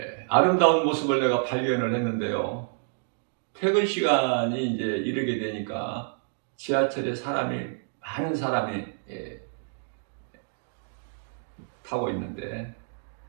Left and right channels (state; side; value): silent; left; digital silence